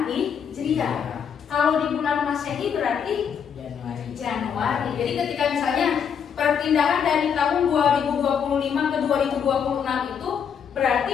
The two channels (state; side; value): quieter; right; 7.5 dB